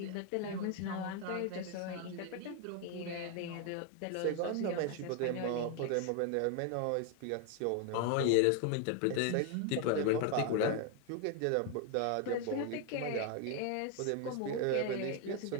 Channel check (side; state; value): both; different; correlation 0.01